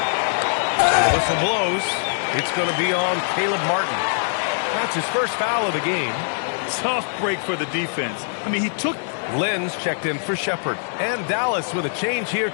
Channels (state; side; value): silent; right; digital silence